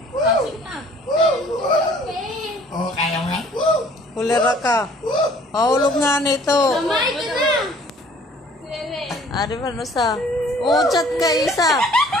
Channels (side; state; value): both; normal; correlation 0.55